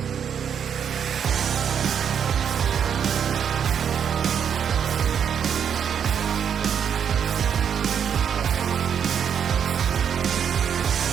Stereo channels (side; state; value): left; quieter; 8.0 dB